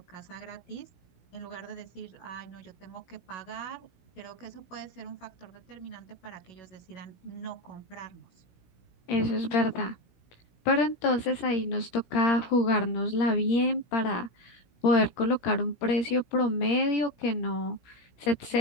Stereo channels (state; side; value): late; right; 17 ms